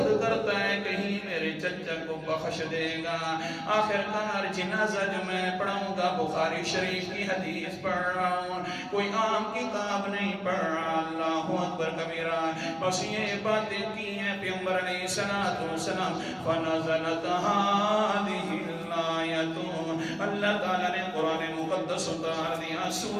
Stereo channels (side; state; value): both; identical; correlation 1.00